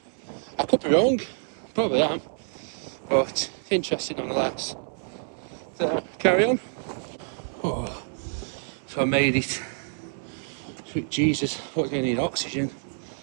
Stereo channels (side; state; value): left; silent; 60 dB below the other